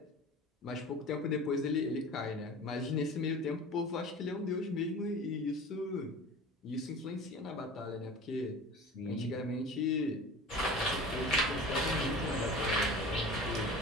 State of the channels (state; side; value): normal; both; correlation 0.38